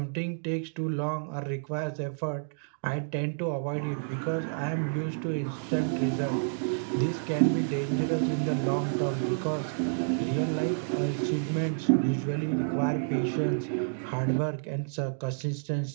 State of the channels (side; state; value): left; silent; digital silence